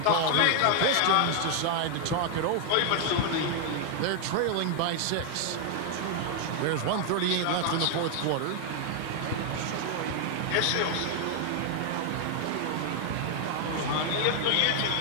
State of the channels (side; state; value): both; different; correlation 0.00